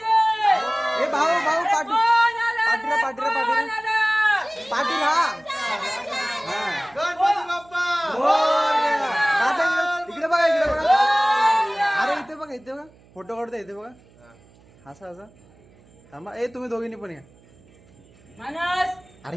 ए भाऊ भाऊ पाटील कोण आलं रे? पाटील पाटील कोण पाटील आलं? पाटील हा. गणपती बाप्पा मोरया. दादा इकडे बघा इकडे बघा. अरे इथे बघा इथे बघा. फोटो काढतो इथे बघा. असा असा थांबा. ए तुम्ही दोघींनी पण या. मानस अरे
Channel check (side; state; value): right; noise; hum, 28 dB below the sound